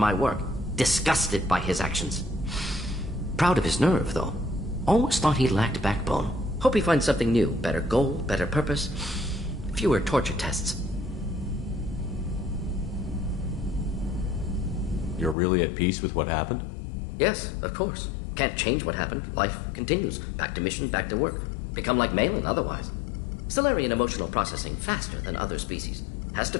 work. Disgusted by his actions. Proud of his nerve, though. Almost thought he lacked backbone. Hope he finds something new. Better goal, better purpose. Fewer torture tests. You're really at peace with what happened? Yes, of course. Can't change what happened. Life continues. Back to mission, back to work. Become like Malin otherwise. Solarian emotional processing faster than other species. Has to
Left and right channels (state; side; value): drops out; right; at 15.4 s